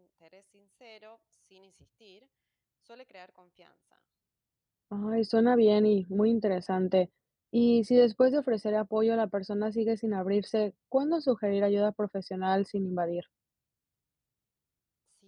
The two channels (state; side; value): identical; both; correlation 1.00